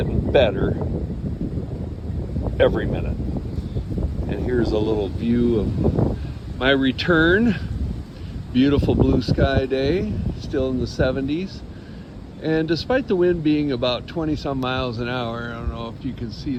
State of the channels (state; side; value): identical; both; correlation 1.00